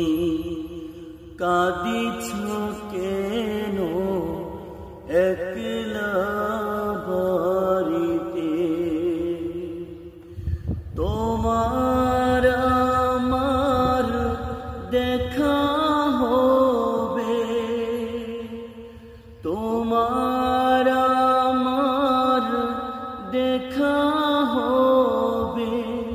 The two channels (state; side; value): identical; both; correlation 1.00